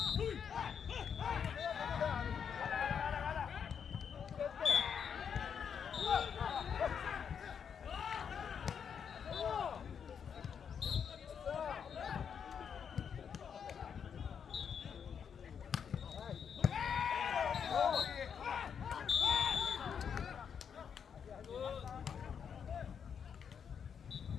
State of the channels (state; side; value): quieter; right; 7.3 dB